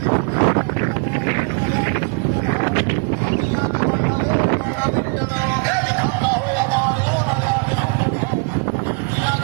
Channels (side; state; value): left; quieter; 36.2 dB